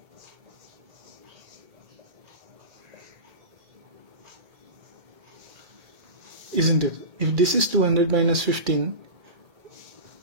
Isn't it? If this is 200 minus 15,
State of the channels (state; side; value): late; left; 2.4 ms